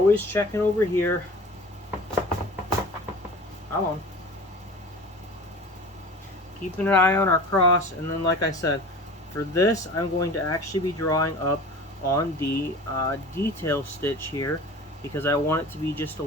checking over here. Come on. Keeping an eye on our cross, and then like I said, for this I'm going to actually be drawing up on the detail stitch here because I want it to be just a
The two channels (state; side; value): normal; both; correlation 0.39